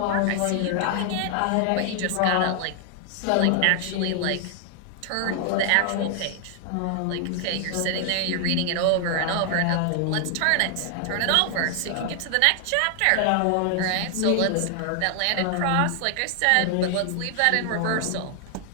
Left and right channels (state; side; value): different; both; correlation 0.00